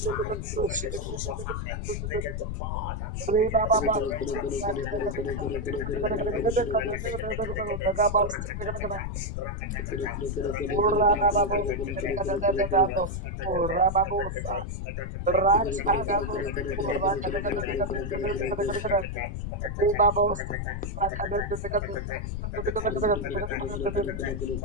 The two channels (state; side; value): noise; left; rumble, 4 dB below the sound